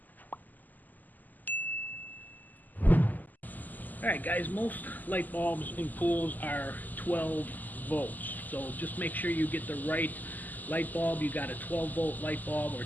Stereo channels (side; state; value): right; late; 0.083 ms